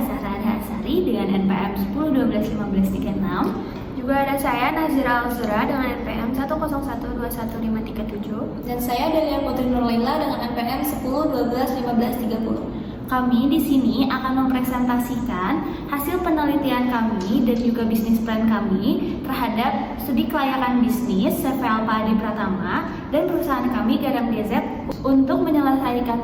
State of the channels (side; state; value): both; identical; correlation 1.00